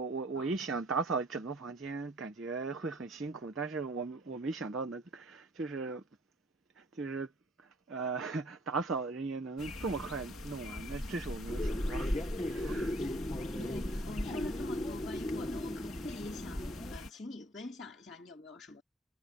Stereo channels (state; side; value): normal; both; correlation 0.57